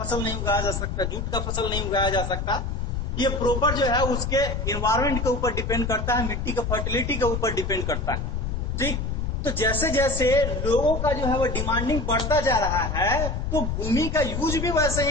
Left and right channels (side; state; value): left; noise; rumble, 2 dB below the sound